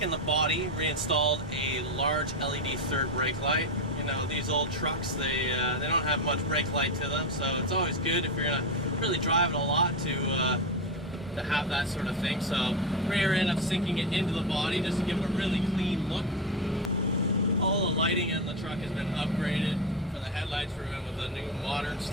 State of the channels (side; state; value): both; normal; correlation 0.15